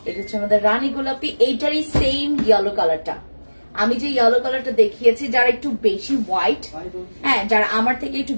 এটা হচ্ছে আমাদের রানী গোলাপি, এইটারই সেম ইয়েলো কালারটা। আমি যে ইয়েলো কালারটা দেখিয়েছি, যারা একটু বেশি হোয়াইট, হ্যাঁ যারা আমার থেকে একটু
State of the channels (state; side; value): inverted; both; correlation -1.00